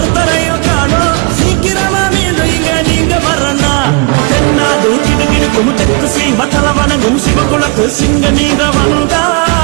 காணோம். சீக்கிரமா மீண்டும் இங்க நீங்க வரனா? தென்னாடு கிடுகிடுக்கும் தெற்கு சீம தலவனங்கும் சிவகுலத்து சிங்க நீங்க வந்தா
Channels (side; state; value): left; quieter; 32.3 dB